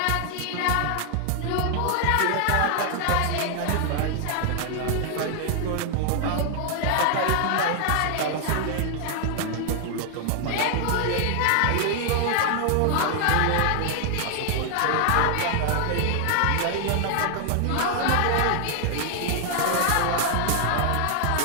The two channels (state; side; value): different; both; correlation 0.00